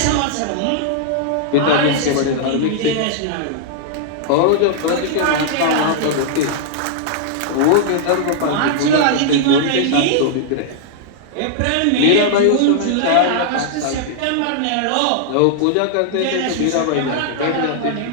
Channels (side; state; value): both; different; correlation -0.01